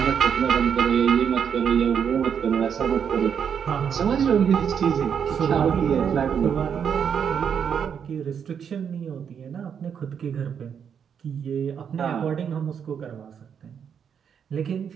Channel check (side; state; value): left; quieter; 7.6 dB